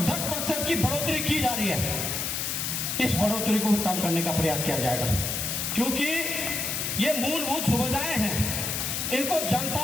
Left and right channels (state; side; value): noise; left; hiss, 1 dB below the sound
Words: 10% की बढ़ोतरी की जा रही है। इस बढ़ोतरी को भी कम करने का प्रयास किया जाएगा, क्योंकि ये मूलभूत सुविधाएं हैं, इनको